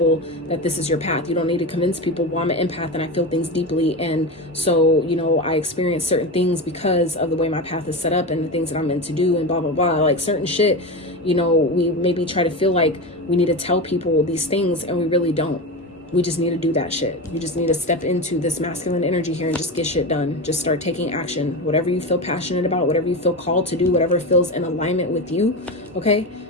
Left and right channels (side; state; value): both; normal; correlation 0.21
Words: that this is your path. You don't need to convince people, well, I'm an empath and I feel things deeply. And so, you know, I experience certain things because of the way my path is set up and the things that I'm meant to do and blah, blah, blah. Like certain shit, you know, we maybe try to feel like we need to tell people these things, and we really don't. We just need to do that shit. You just need to step into this masculine energy here and just get shit done. Just start taking action. Whatever you feel passionate about, whatever you feel called to do, whatever feels in alignment with you, okay?